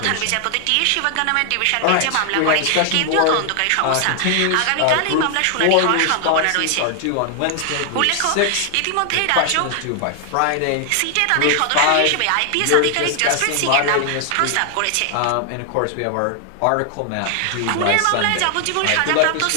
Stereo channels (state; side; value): different; both; correlation 0.00